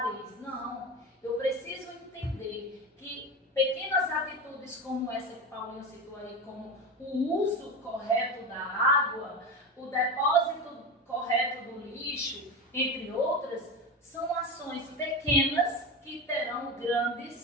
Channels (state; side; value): normal; both; correlation 0.23